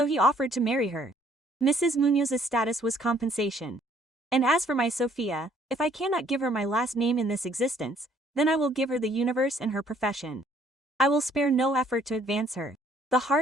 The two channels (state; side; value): normal; both; correlation 0.62